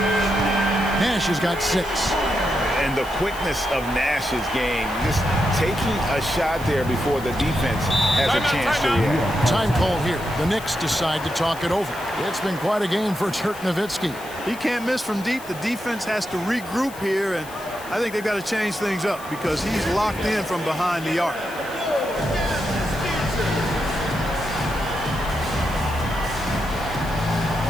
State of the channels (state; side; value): noise; left; hiss, 18 dB below the sound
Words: Nash has got 6. And the quickness of Nash's game, just taking a shot there before the defense has a chance to react. Time call here. The Knicks decide to talk it over. It's been quite a game for Dirk Nowitzki. He can't miss from deep. The defense has to regroup here, and I think they've got to change things up because he's locked in from behind the arc.